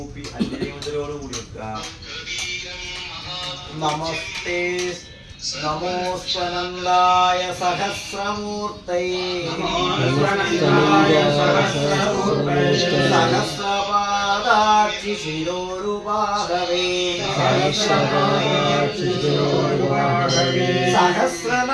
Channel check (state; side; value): identical; both; correlation 1.00